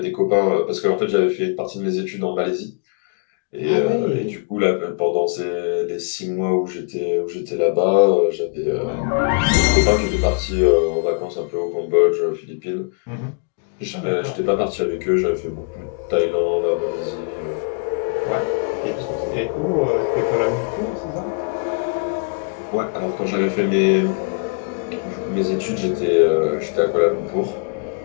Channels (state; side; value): quieter; right; 37.1 dB